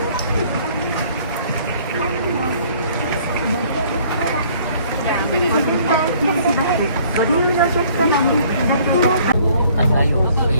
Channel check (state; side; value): inverted; both; correlation -0.58